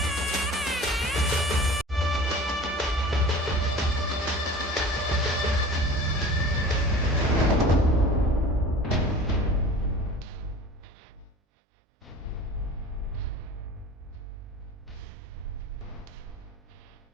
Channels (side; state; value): both; normal; correlation 0.41